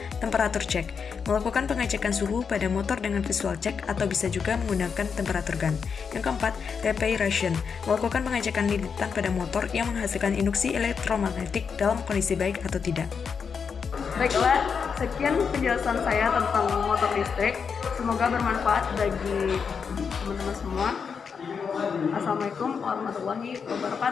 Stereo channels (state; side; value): quieter; right; 6.1 dB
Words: temperatur check. Melakukan pengecekan suhu pada motor dengan visual check atau bisa juga menggunakan temperatur gun. Yang keempat, reparation. Melakukan pengecekan lilitan pada motor yang menghasilkan induksi elektromagnetik dalam kondisi baik atau tidak. Baiklah, sekian penjelasan saya tentang motor listrik. Semoga bermanfaat bagi teman-teman semua. Assalamualaikum warahmatullahi